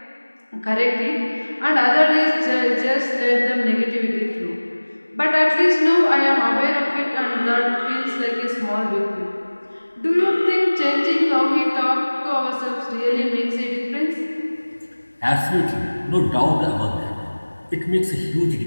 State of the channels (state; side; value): inverted; both; correlation -1.00